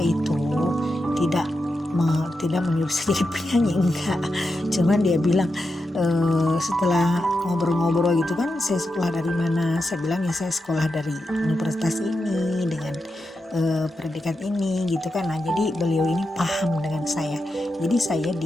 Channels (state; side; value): normal; both; correlation 0.88